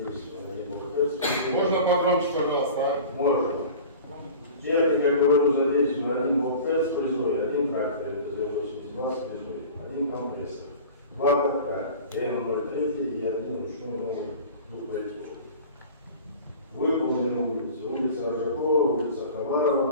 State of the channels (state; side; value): inverted; both; correlation -0.39